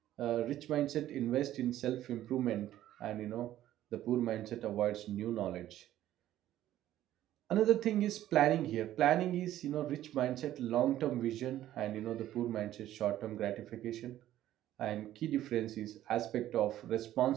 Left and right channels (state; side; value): quieter; left; 13.1 dB